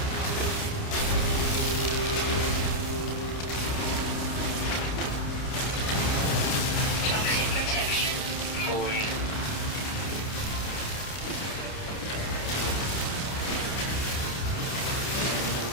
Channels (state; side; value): late; right; 29 ms